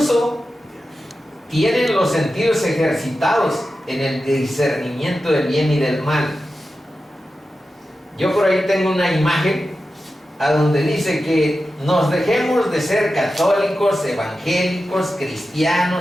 tienen los sentidos ejercitados en el discernimiento del bien y del mal. Yo por ahí tengo una imagen a donde dice que nos dejemos de ser católicos, evangélicos,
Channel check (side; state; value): both; normal; correlation 0.92